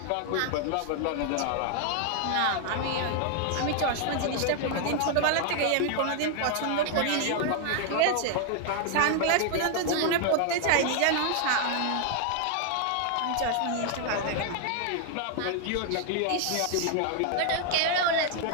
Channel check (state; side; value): different; both; correlation 0.00